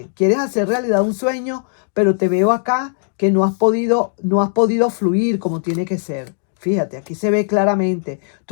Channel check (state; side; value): silent; right; digital silence